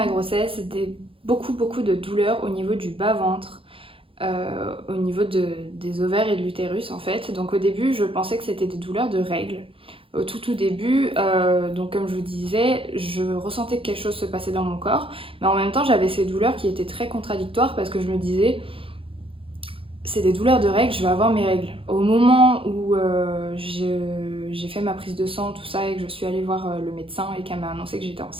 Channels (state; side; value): late; left; 0.26 ms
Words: grossesse, beaucoup de douleurs au niveau du bas-ventre. Au niveau des ovaires et de l'utérus en fait. Donc au début je pensais que c'était des douleurs de règles. Au tout début, donc comme je vous disais, je ressentais que quelque chose se passait dans mon corps, mais en même temps j'avais ces douleurs qui étaient très contradictoires parce que je me disais c'est des douleurs de règles, je vais avoir mes règles. Au moment où j'ai fait ma prise de sang, tout ça, et que je suis allée voir le médecin et qu'elle m'a annoncé que j'étais